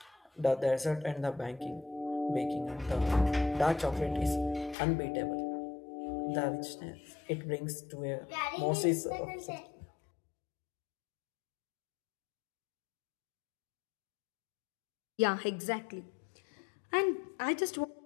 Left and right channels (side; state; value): right; drops out; at 4.8 s